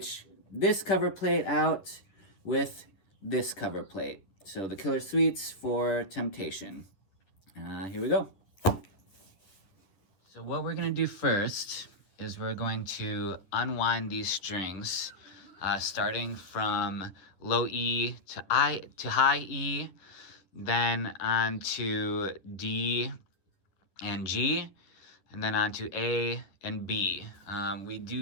this cover plate out with this cover plate. So the Killer Sweets for Temptation. Here we go. So what we're gonna do first is we're going to unwind these strings, starting from low E to high E, then on to D and G, and then on to A and B. We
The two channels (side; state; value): right; late; 11 ms